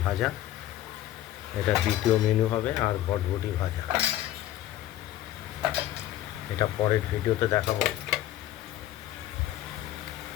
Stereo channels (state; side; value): quieter; right; 13.4 dB